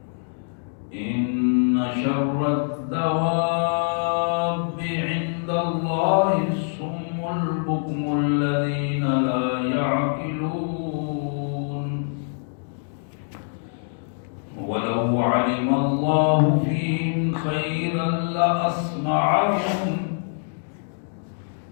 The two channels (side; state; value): right; silent; digital silence